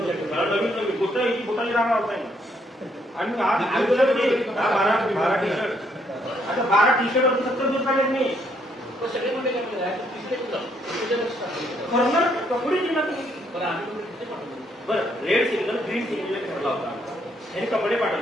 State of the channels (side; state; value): both; normal; correlation 0.71